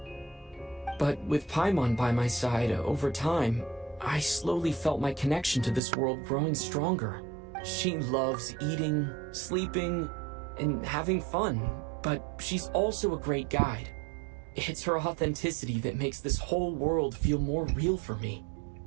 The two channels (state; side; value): drops out; left; at 5.8 s